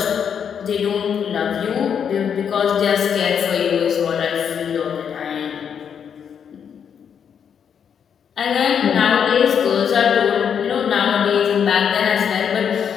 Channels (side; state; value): right; quieter; 7.7 dB